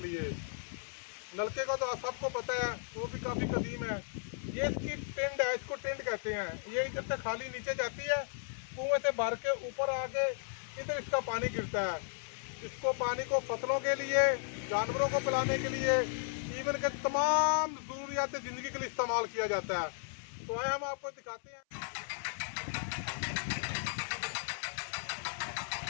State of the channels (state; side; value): silent; right; 54 dB below the other